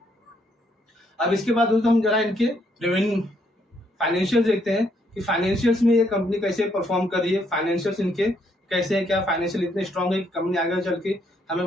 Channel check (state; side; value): normal; both; correlation 0.72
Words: अब इसके बाद दोस्तों हम जरा इनके रेवेन्यू फाइनेंशियल देखते हैं कि फाइनेंशियल्स में ये कंपनी कैसे परफॉर्म कर रही है, फाइनेंशियल्स इनके कैसे है, क्या फाइनेंशियल इतने स्ट्रांग है कि कंपनी आगे चल के हमें